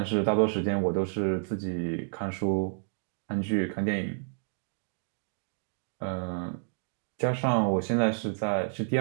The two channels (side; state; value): left; silent; digital silence